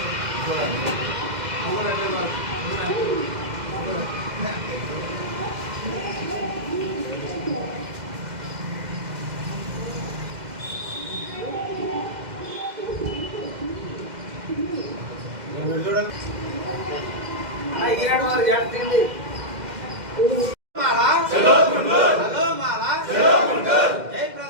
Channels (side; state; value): left; late; 2.0 ms